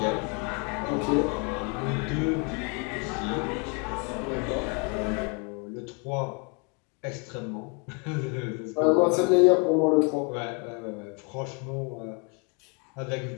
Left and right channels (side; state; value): right; quieter; 34.7 dB